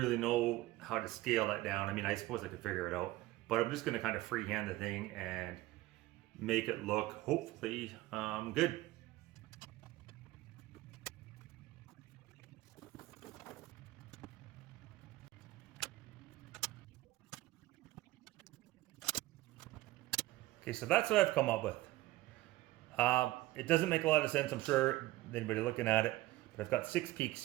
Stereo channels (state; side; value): quieter; left; 17.5 dB